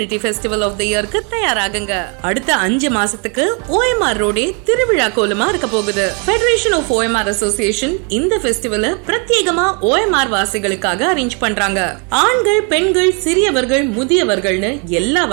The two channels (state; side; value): quieter; left; 35.8 dB